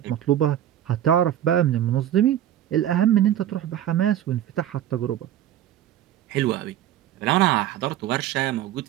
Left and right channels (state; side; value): quieter; left; 11.5 dB